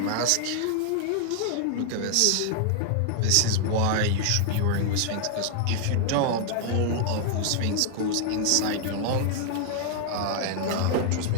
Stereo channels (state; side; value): different; both; correlation 0.00